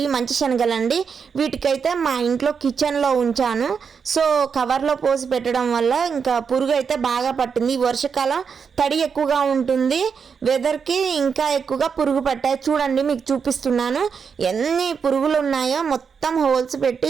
మంచి శనగలండి. వీటికైతే మా ఇంట్లో కిచెన్లో ఉంచాను. సో కవర్లో పోసి పెట్టడం వల్ల ఇంకా పురుగు అయితే బాగా పట్టింది. ఈ వర్షాకాలం తడి ఎక్కువగా ఉంటుంది, వెదర్కి ఇంకా ఎక్కువగా పురుగు పట్టాయి. చూడండి, మీకు చూపిస్తున్నాను ఎన్ని పురుగులు ఉన్నాయో. మొత్తం హోల్స్ పెట్టి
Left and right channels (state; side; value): quieter; left; 6.2 dB